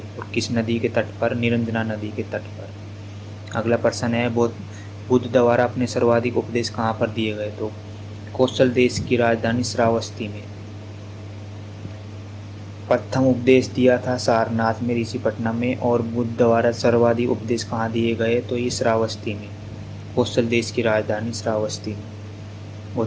और किस नदी के तट पर? निरंजना नदी के तट पर। अगला प्रश्न है, बुद्ध द्वारा अपने सर्वाधिक उपदेश कहाँ पर दिए गए? तो कौशल देश की राजधानी श्रावस्ती में। प्रथम उपदेश दिया था सारनाथ में, ऋषिपटना में, और बुद्ध द्वारा सर्वाधिक उपदेश कहाँ दिए गए, तो ये श्रावस्ती में, कौशल देश की राजधानी श्रावस्ती में।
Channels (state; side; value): identical; both; correlation 1.00